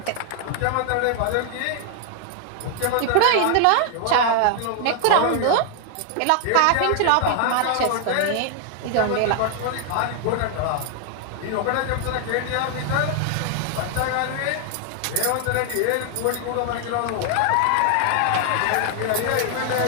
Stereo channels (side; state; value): both; different; correlation 0.00